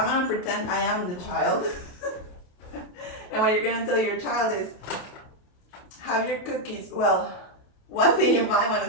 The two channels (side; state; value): right; late; 28 ms